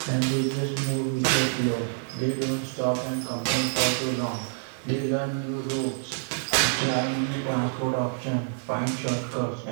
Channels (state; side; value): silent; left; digital silence